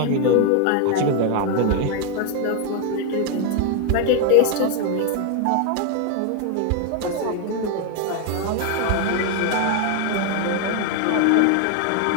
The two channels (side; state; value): both; different; correlation 0.01